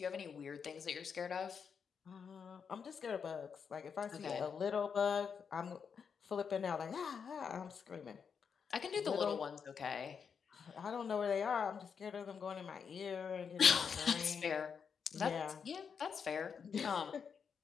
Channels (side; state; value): right; quieter; 6.5 dB